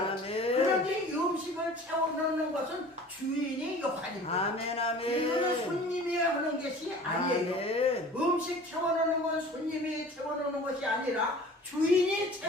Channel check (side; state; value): both; normal; correlation 0.44